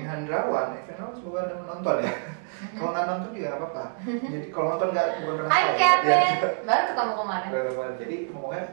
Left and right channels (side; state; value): left; silent; digital silence